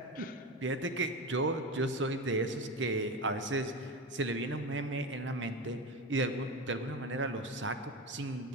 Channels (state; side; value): normal; both; correlation 0.22